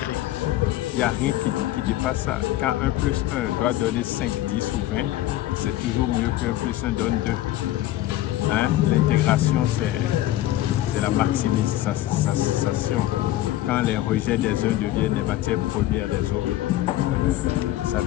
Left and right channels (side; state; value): right; quieter; 14.7 dB